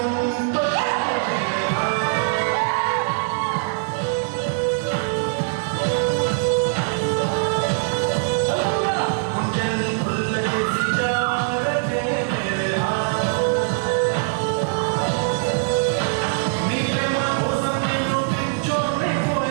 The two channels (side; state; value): left; silent; digital silence